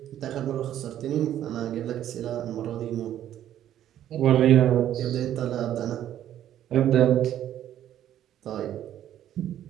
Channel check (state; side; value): quieter; left; 11.5 dB